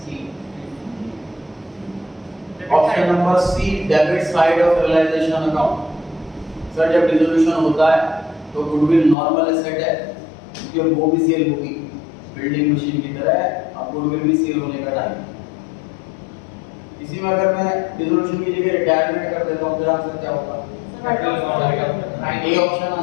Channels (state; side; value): drops out; right; at 9.2 s